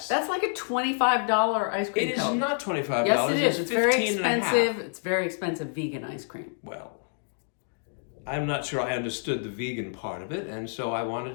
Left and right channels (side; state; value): right; silent; 60 dB below the other